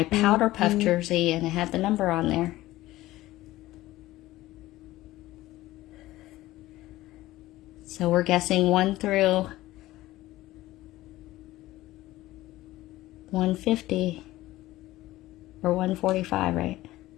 powder puff jersey, and it had the number on there. So we're guessing 1 through 150 or 145, right?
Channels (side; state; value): right; quieter; 16.8 dB